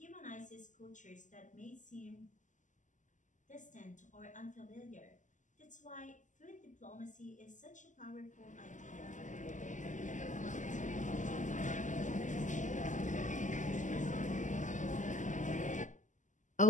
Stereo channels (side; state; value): right; late; 0.37 ms